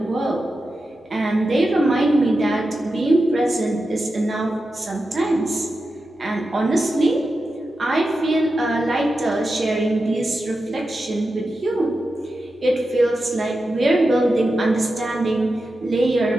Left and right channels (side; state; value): both; normal; correlation 0.91